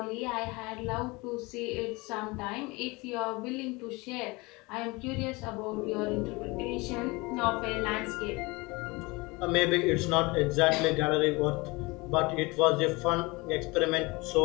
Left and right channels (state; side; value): quieter; right; 24.6 dB